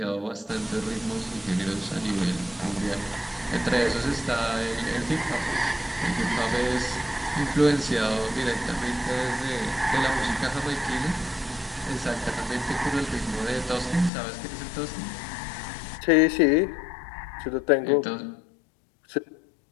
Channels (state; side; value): drops out; right; at 14.1 s